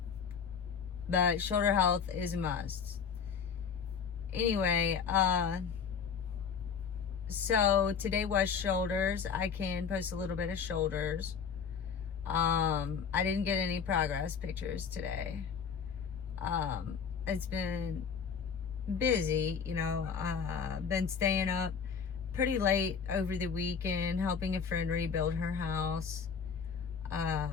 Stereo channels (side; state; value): right; quieter; 6.5 dB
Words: but shoulder health is a must. Anyway, so today was shoulders. I can post a little bit of shoulders. I didn't get any progress pictures today. It's been busy, been staying up pretty late over the weekend, helping a friend rebuild her house.